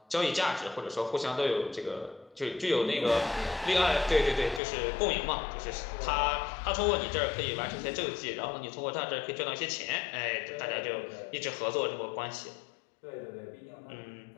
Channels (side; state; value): right; drops out; at 4.6 s